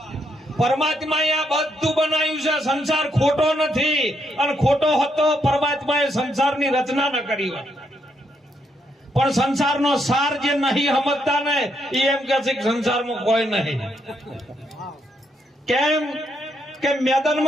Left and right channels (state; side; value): normal; both; correlation 0.76